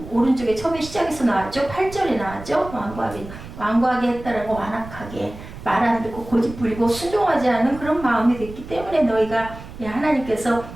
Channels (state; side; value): noise; right; rumble, 14 dB below the sound